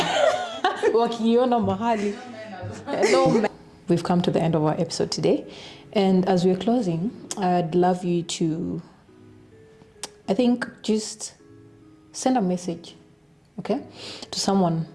Wakiona mahali. No. We've come to the end of our episode today, and as we're closing, I'd love you to, I think, just send a message, okay, to someone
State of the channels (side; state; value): both; identical; correlation 1.00